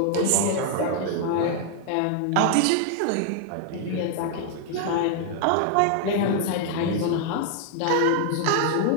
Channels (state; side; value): different; both; correlation 0.00